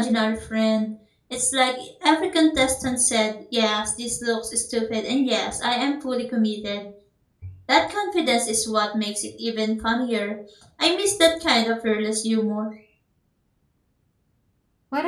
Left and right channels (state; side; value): identical; both; correlation 1.00